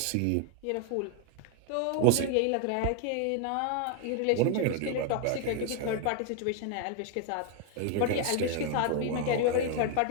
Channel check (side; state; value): both; different; correlation 0.00